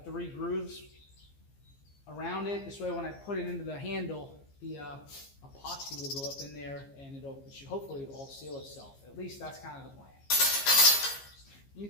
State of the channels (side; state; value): right; late; 15 ms